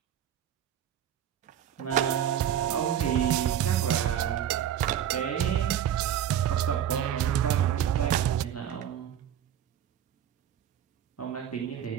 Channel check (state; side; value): quieter; left; 10.0 dB